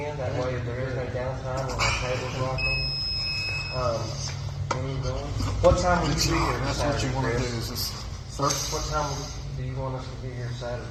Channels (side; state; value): both; identical; correlation 1.00